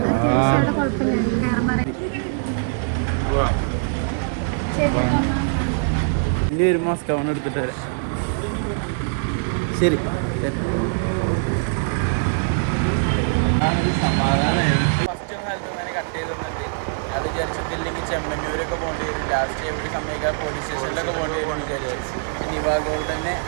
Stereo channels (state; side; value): silent; left; 64 dB below the other